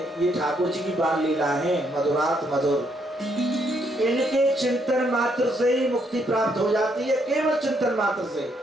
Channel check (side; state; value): both; normal; correlation 0.73